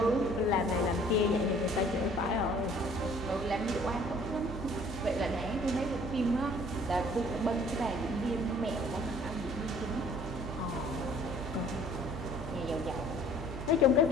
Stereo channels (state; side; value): noise; right; hum, 8 dB below the sound